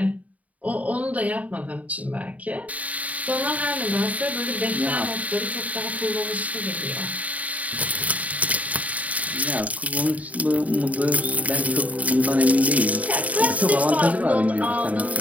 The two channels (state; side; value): late; left; 0.071 ms